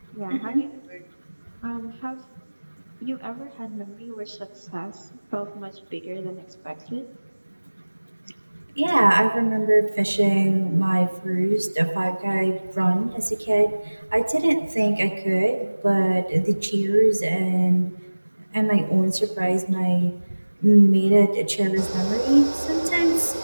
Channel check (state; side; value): inverted; both; correlation -1.00